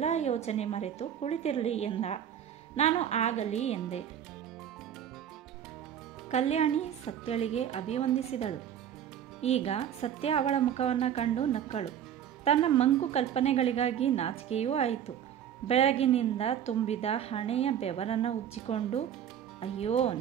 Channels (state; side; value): quieter; left; 9.5 dB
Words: ಯೋಚನೆ ಮರೆತು ಕುಳಿತಿರಲಿ ಎಂದ. ನಾನು ಆಗಲಿ ಎಂದೆ. ಕಲ್ಯಾಣಿ ಸತ್ಯಳಿಗೆ ಅಭಿವಂದಿಸಿದಳು. ಈಗ ಸತ್ಯ ಅವಳ ಮುಖವನ್ನು ಕಂಡು ನಕ್ಕಳು. ತನ್ನ ಮಂಕು ಕಲ್ಪನೆಗಳಿಗಾಗಿ ನಾಚಿಕೆಯೂ ಆಯಿತು. ಬೆಳಗಿನಿಂದ ತುಂಬಿದ ಹಣೆಯ ಬೆವರನ್ನು ಉಜ್ಜಿಕೊಂಡು, ಅಯ್ಯೋ